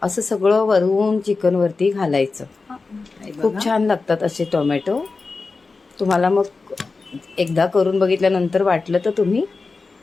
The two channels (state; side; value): quieter; right; 4.1 dB